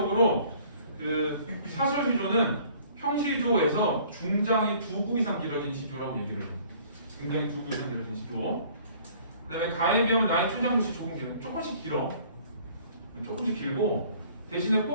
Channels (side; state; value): both; inverted; correlation -0.54